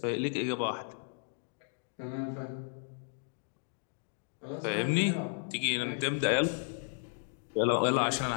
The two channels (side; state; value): right; silent; 55 dB below the other